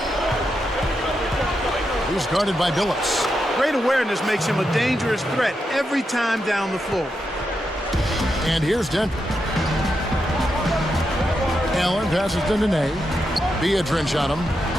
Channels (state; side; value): normal; both; correlation 0.85